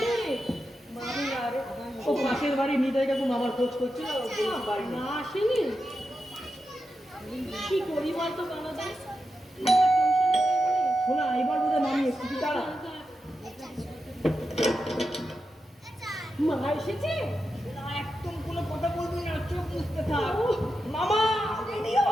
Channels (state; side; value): normal; both; correlation 0.88